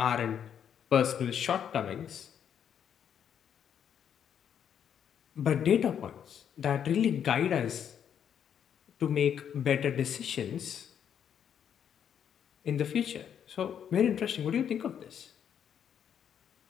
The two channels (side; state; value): right; quieter; 8.6 dB